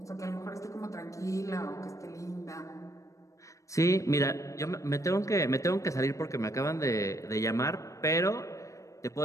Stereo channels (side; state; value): right; late; 0.15 ms